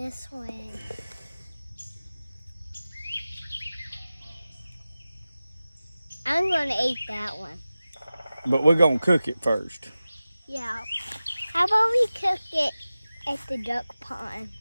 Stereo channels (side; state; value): both; inverted; correlation -0.96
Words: one. I'm gonna eat that one. But we're gonna cook it first. Yeah. How about we cook it at the duck pond?